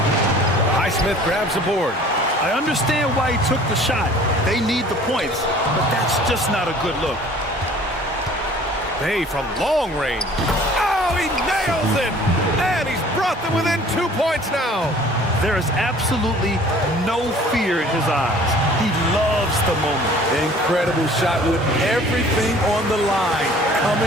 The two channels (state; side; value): normal; both; correlation 0.50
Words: Highsmith grabs the board. I understand why he took the shot. They need the points, but that's just not a good look. Bay from long range. Oh, he nails it! And he's brought them within 2 points now. There is absolutely no fear in his eyes. He loves the moment. Incredible shot with everything on the line